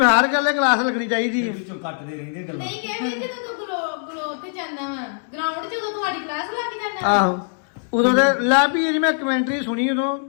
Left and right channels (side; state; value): right; silent; 64 dB below the other